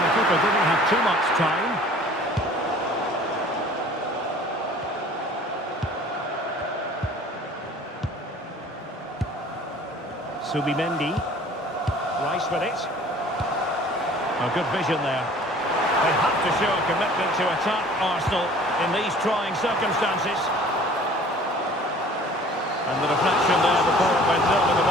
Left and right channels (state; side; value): normal; both; correlation 0.49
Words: the keeper didn't have too much time. Subimendi. Rice with it. Oh, good vision there. They have to show a commitment to attack Arsenal in these trying circumstances. And the deflection there before it went over the